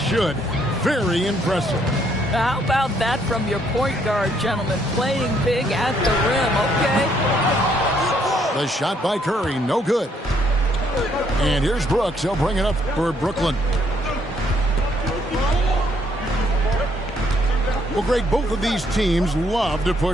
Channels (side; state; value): both; normal; correlation 0.69